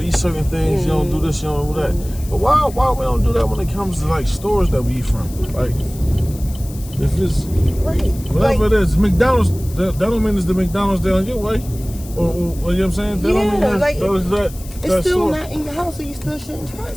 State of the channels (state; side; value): noise; left; hiss, 18 dB below the sound